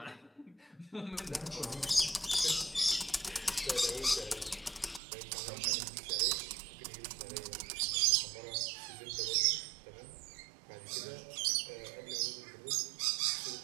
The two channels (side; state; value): left; drops out; at 5.0 s